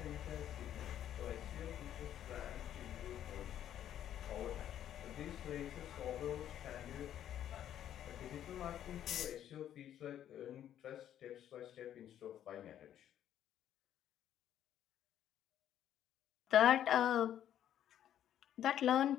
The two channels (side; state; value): right; quieter; 10.8 dB